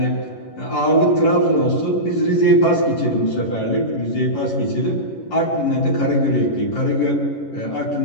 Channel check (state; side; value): late; right; 11 ms